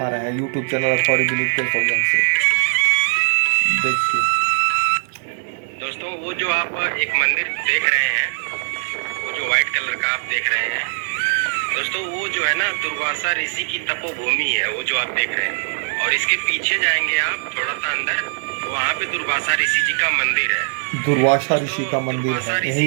रहे हैं यूट्यूब चैनल अखबारी विनीत के सौजन से। देखिए दोस्तों, वो जो आप एक मंदिर देख रहे हैं, वो जो व्हाइट कलर का आप देख रहे हैं दोस्तों, वो जो है ना दुर्वासा ऋषि की तपोभूमि है, वो जो आप देख रहे हैं। और इसके पीछे जाएंगे आप थोड़ा सा अंदर, वहाँ पे दुर्वासा ऋषि जी का मंदिर है। दुर्वासा ऋषि का मंदिर है, यहीं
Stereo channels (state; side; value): silent; left; 61 dB below the other